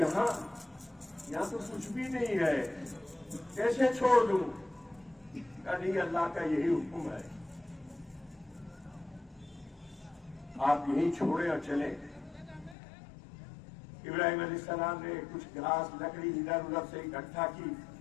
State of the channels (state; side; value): drops out; right; at 12.8 s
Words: तो कुछ भी नहीं है, कैसे छोड़ दूं? कहा नहीं, अल्लाह का यही हुक्म है, आप यही छोड़े और चले। इब्राहिम अलैहिस्सलाम ने कुछ घास लकड़ी इधर उधर से इकट्ठा की,